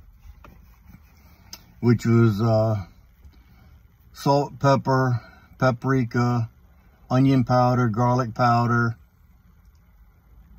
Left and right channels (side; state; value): both; identical; correlation 1.00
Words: which was salt, pepper, paprika, onion powder, garlic powder.